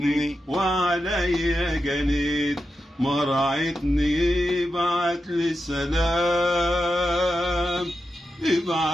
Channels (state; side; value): normal; both; correlation 0.89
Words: وعليا جنيت مرعتني. ابعت لي سلام،